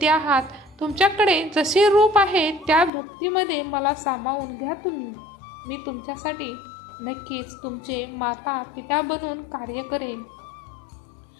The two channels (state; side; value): drops out; right; at 2.9 s